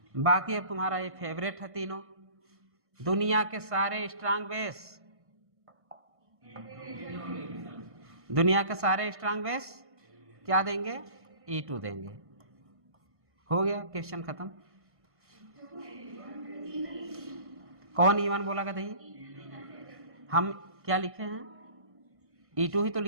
बाकी अब तुम्हारा ये फेवरेट है तीनों, दुनिया के सारे स्ट्रांग बेस, दुनिया के सारे स्ट्रांग बेस क्या देंगे, E2 देंगे। हो गया क्वेश्चन खत्म। कौन E1 बोला गधई, हम क्या लिखे हैं, E2 ही तो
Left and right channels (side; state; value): left; late; 1.6 ms